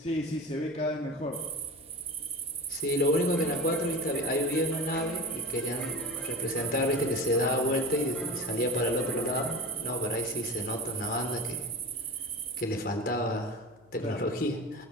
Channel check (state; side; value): noise; left; hum, 28 dB below the sound